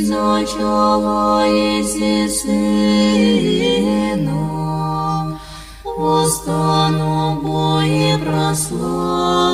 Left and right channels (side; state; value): both; identical; correlation 1.00